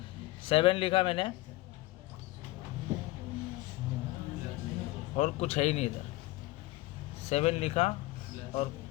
7 लिखा मैंने और कुछ है ही नहीं इधर, 7 लिखा और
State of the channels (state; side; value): quieter; right; 19.2 dB